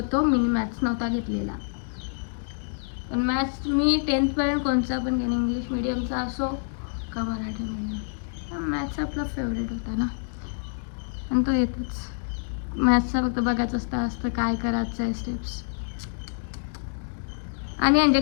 मी मॅथ्स नव्हता घेतलेला. पण मॅथ्स मी 10thपर्यंत कोणचा पण घेईन, इंग्लिश मीडियमचा असो का मराठी मीडियम. मॅथ्स आपला फेवरेट होता ना, आणि तो येतोच. मॅथ्सचा फक्त बघायचं असतं काय करायचं आहे स्टेप्स. आणि म्हणजे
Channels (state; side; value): silent; right; digital silence